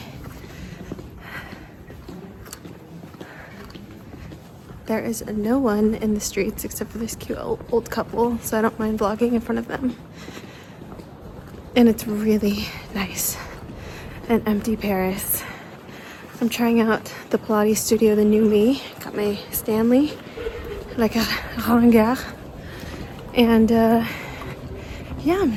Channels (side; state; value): both; identical; correlation 1.00